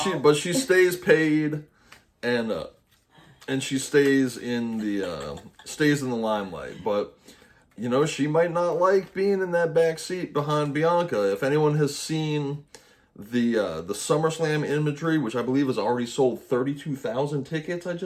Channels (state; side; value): identical; both; correlation 1.00